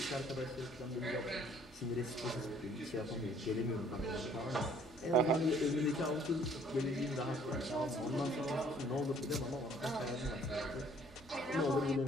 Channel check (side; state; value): both; normal; correlation 0.59